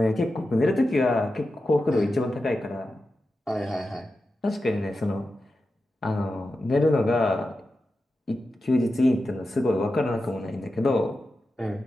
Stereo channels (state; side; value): normal; both; correlation 0.91